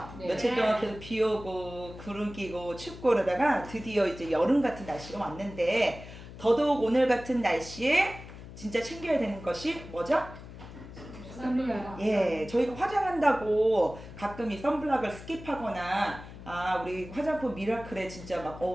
네. 며칠 동안 계속 비 오고 구름 끼고 춥고 그러다가 드디어 이제 여름 같은 날씨가 왔는데 더더욱 오늘 같은 날씨에 진짜 챙겨야 되는 것이 뭐죠? 선블락. 예, 저희가 화장한다고 가끔 이 선블락을 스킵하거나 우리 화장품 미라클에 진짜 막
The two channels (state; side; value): noise; left; hum, 14 dB below the sound